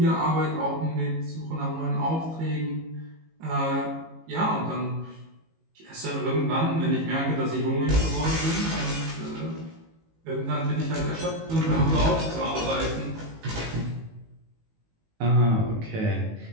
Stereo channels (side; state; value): left; late; 18 ms